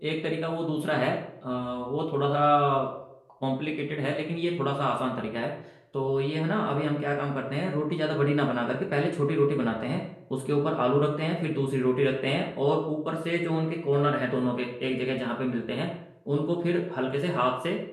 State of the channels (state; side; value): identical; both; correlation 1.00